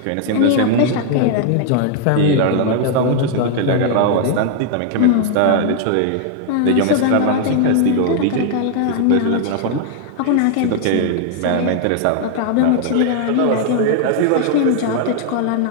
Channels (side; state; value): both; different; correlation 0.00